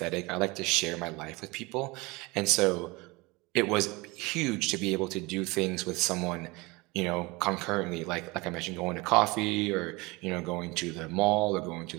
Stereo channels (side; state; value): left; quieter; 24.3 dB